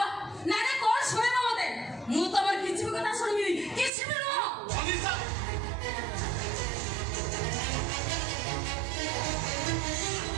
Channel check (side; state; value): left; drops out; at 3.9 s